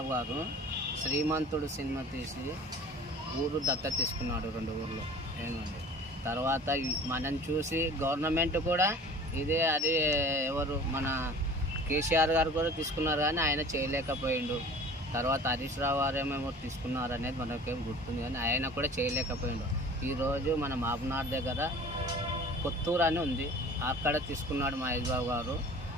గారు శ్రీమంతుడు సినిమా తీసి ఊరు దత్తత తీసుకున్నాడు, 2 ఊర్లు ఏమండి. తర్వాత మనం చూసి గవర్నమెంట్ కూడా ఇదే అది ఎవరు మన కేసీఆర్ గారు కూడా తీసుకున్నారు, కానీ ఆయన చేయలేకపోయిండు. తర్వాత హరీష్ రావు గారు ఏమేమో తీసుకున్నారు అనేది మనకేం గుర్తుంది, కానీ ఆయన కూడా చేయలేకపోయిండు. ఈరోజు మన మాబనార్ దగ్గర కొత్తూరు అని ఉంది, అక్కడ తీసుకున్నాడు మహేష్ బాబు గారు.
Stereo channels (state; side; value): normal; both; correlation 0.43